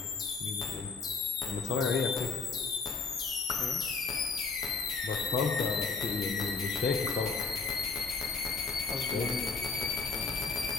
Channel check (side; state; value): right; quieter; 4.6 dB